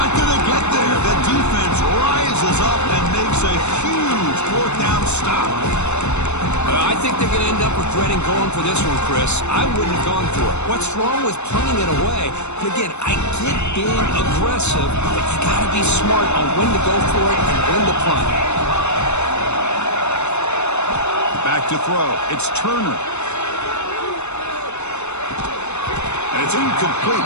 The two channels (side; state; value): right; late; 0.82 ms